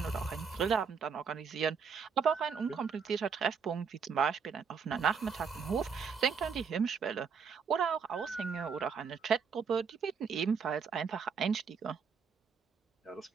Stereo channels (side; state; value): left; quieter; 6.1 dB